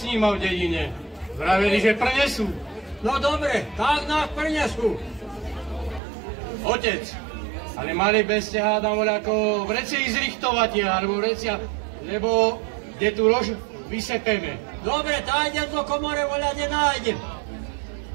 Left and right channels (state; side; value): drops out; left; at 6.0 s